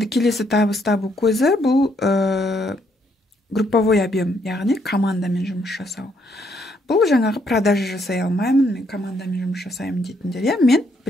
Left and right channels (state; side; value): normal; both; correlation 0.72